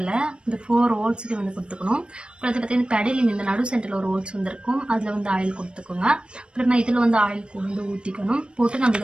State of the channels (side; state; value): left; late; 0.055 ms